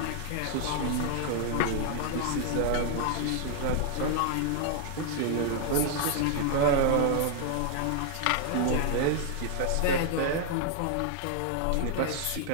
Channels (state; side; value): different; both; correlation 0.00